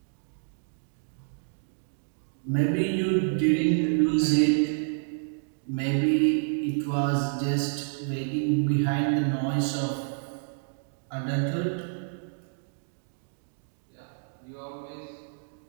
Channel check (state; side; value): silent; left; digital silence